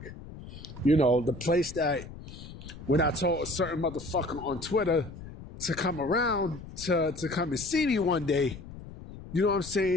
You know, the place that when I told a certain motherfucker on Twitter to come around to come and see me one day, you know what I'm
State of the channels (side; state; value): left; noise; rumble, 14 dB below the sound